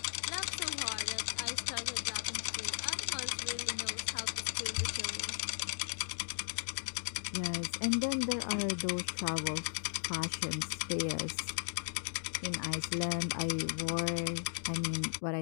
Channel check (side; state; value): right; silent; digital silence